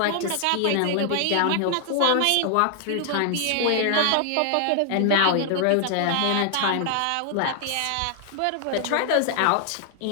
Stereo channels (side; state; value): both; different; correlation 0.00